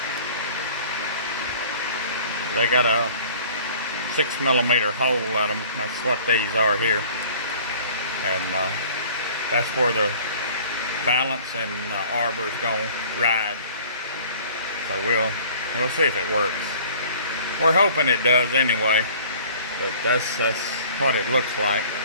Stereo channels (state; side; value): inverted; both; correlation -0.49